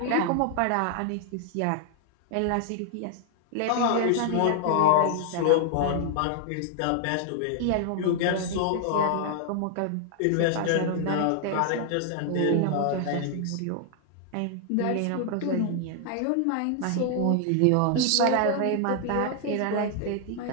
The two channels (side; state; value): both; different; correlation 0.00